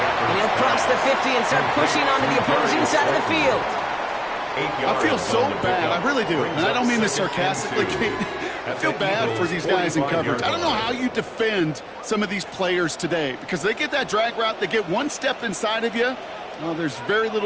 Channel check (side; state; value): both; identical; correlation 1.00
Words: And he'll cross the 50 and start pushing onto the opposing side of the field. I feel so bad. I really do. And I don't mean this sarcastically, Kate. I feel bad for these guys in coverage. I don't know how you defend some of these players today because they get that drag route, they get one step inside of you. Well, there's very